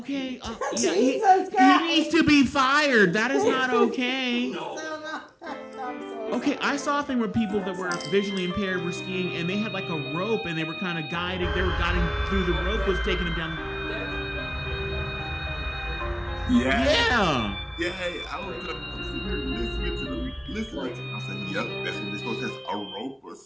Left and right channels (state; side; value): identical; both; correlation 1.00